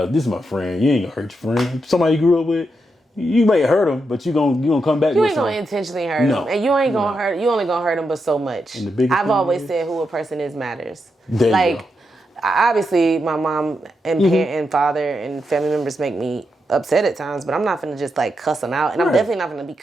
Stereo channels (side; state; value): both; normal; correlation 0.84